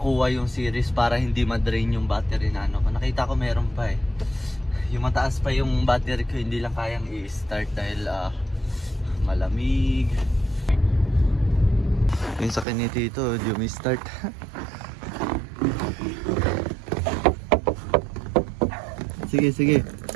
yung series para hindi ma-drain yung battery na ano. Nakita ko meron pa, eh. Yung mataas pa yung battery ko, hindi lang kayang i-start dahil malamig. Yung sa kanito ito, hindi may start. Sige, sige.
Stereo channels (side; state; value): left; drops out; at 12.7 s